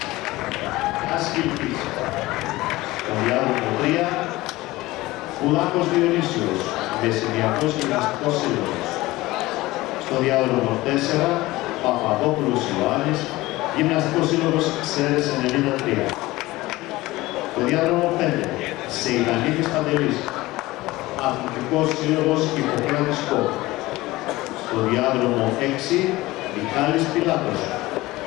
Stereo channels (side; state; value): right; quieter; 19.0 dB